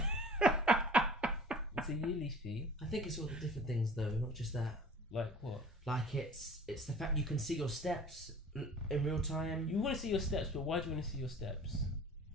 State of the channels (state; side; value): normal; both; correlation 0.45